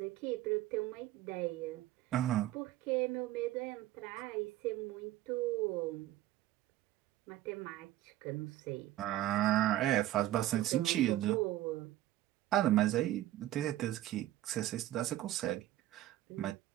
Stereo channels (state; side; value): quieter; left; 14.5 dB